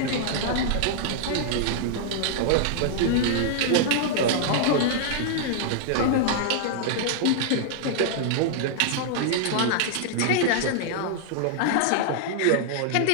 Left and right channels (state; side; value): different; both; correlation -0.01